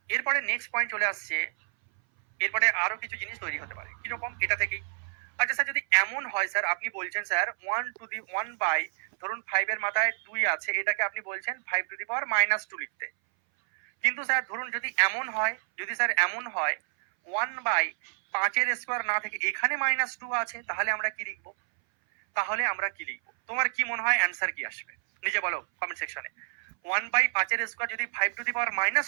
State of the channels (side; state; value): left; silent; 59 dB below the other